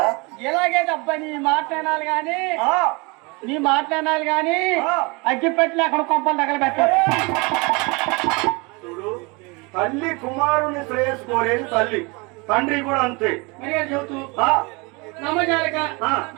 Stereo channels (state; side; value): quieter; left; 28.0 dB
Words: ఇలాగే అబ్బా నీ మాట్లాడాలి గాని అగ్గిపెట్టి అక్కడ కొంపలు తగలబెట్టారు. చూడు తల్లి కుమారుని శ్రేయస్సు కోరేది తల్లి, తండ్రి కూడా అంతే. చెబుతూ నమ్మజాలక